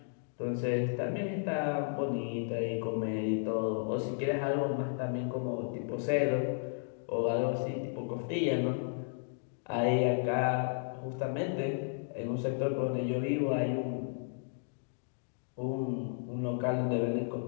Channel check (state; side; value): silent; right; digital silence